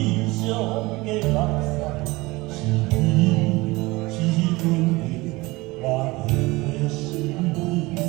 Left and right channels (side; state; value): left; quieter; 22.0 dB